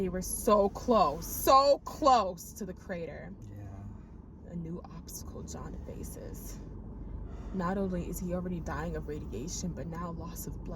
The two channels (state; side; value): identical; both; correlation 1.00